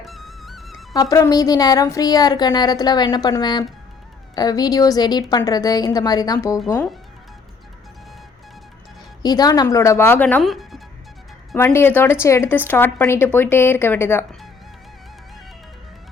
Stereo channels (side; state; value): right; quieter; 4.8 dB